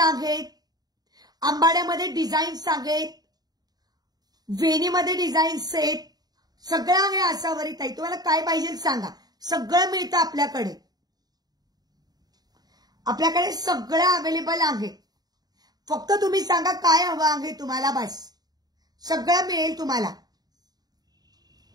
आंबाड्यामध्ये डिझाईन्स आहेत, वेणीमध्ये डिझाईन्स आहेत, सगळं आहे आसावरी ताई. तुम्हाला काय पाहिजे सांगा, सगळं मिळतं आपल्याकडे. आपल्याकडे सगळं अवेलेबल आहे. फक्त तुम्ही सांगा काय हवं आहे तुम्हाला, बस सगळं मिळेल तुम्हाला.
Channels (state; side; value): late; left; 0.19 ms